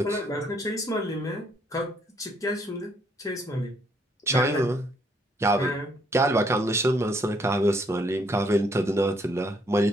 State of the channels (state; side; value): normal; both; correlation 0.68